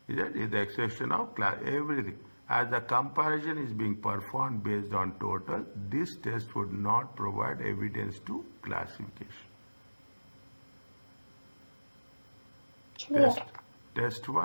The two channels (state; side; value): inverted; both; correlation -1.00